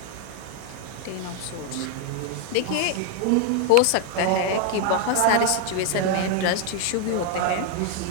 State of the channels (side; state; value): both; different; correlation 0.00